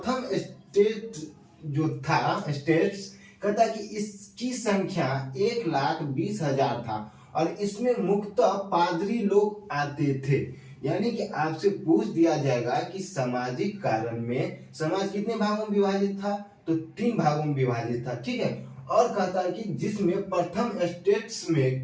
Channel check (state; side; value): identical; both; correlation 1.00